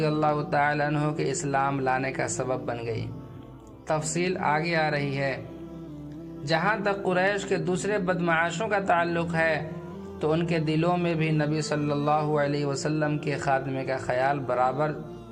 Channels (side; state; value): both; identical; correlation 1.00